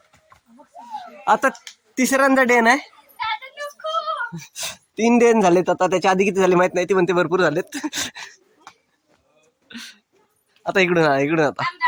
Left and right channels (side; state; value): both; identical; correlation 1.00